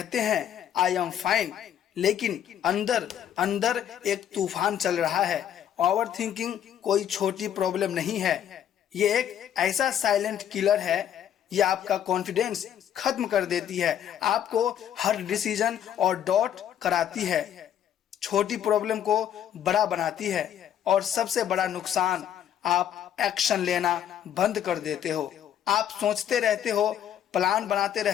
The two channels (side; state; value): right; quieter; 9.9 dB